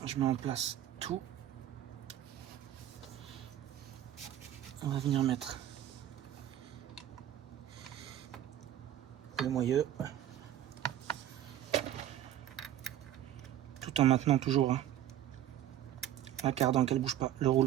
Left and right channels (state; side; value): quieter; left; 11.8 dB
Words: Je mets en place tout. On va venir mettre le moyeu. Tout en maintenant toujours hein, la cardan qu'elle bouge pas. Le